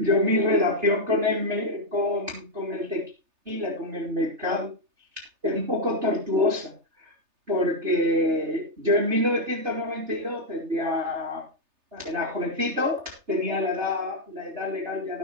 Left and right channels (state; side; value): late; left; 3.3 ms